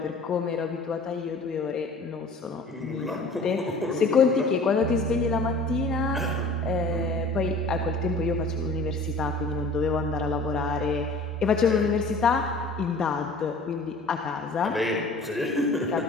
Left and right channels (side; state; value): right; quieter; 3.1 dB